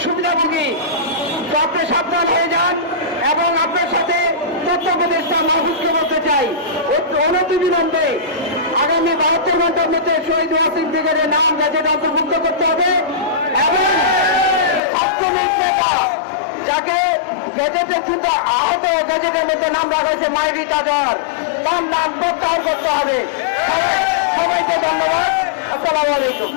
সুবিধাভোগী, তো আপনি সাবধান হয়ে যান। এবং আপনার সাথে তথ্য উপদেষ্টা মাহফুজকে বলতে চাই, অনতিবিলম্বে আগামী 72 ঘন্টার মধ্যে শহীদ ওয়াসিম ব্রিগেডের নাম গেজেটে অন্তর্ভুক্ত করতে হবে এবং ছাত্রলীগ নেতা যাকে গেজেটের দ্রুত আহত গেজেটের মধ্যে নাম রাখা হয়েছে মাইরি তাজার, তার নাম প্রত্যাহার করতে হবে। সবাইকে ধন্যবাদ। আসসালামু আলাইকুম।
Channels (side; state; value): right; drops out; at 14.8 s